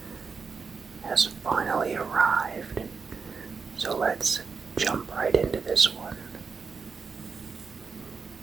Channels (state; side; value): quieter; left; 5.2 dB